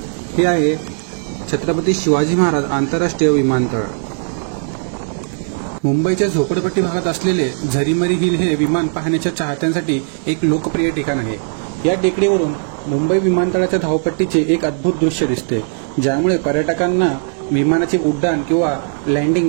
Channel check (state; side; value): silent; left; 65 dB below the other